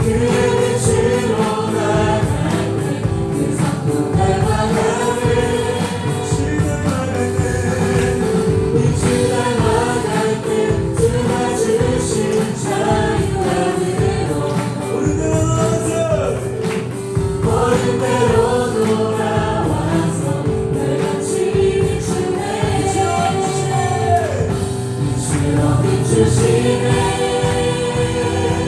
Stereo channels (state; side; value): identical; both; correlation 1.00